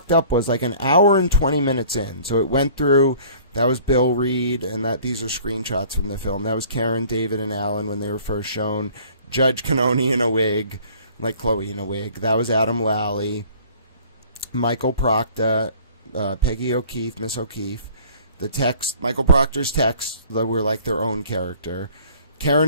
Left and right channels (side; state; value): both; inverted; correlation -0.51